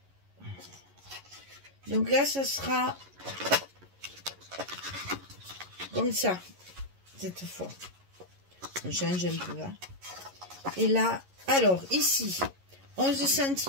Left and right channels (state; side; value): late; left; 11 ms